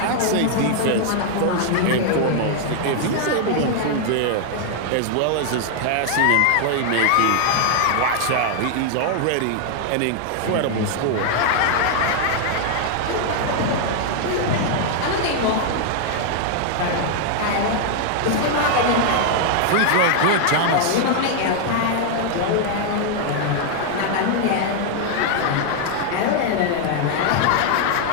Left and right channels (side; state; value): both; different; correlation 0.00